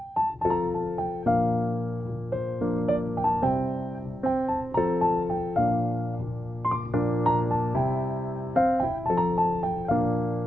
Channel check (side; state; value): both; normal; correlation 0.87